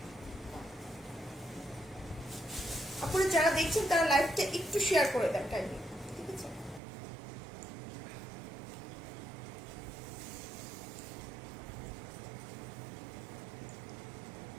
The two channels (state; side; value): drops out; left; at 6.8 s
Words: আপনারা যারা দেখছেন তারা লাইভটা একটু শেয়ার করে দেন কাইন্ডলি, ঠিক আছে।